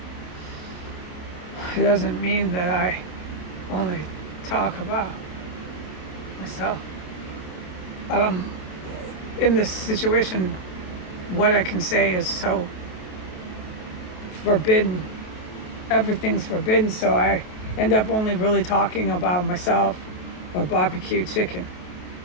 It doesn't mean that I only talk about myself. In this situation, what I can say is so forbidden. Everything's forbidden, so I end up only really talking about myself or barbecue chicken.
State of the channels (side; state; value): right; late; 28 ms